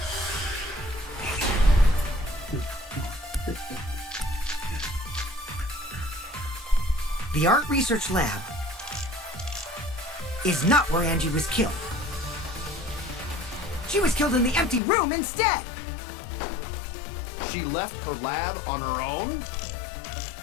The art research lab is not where Angie was killed. She was killed in the empty room instead. She left her lab on her own?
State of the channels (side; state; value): right; drops out; at 14.8 s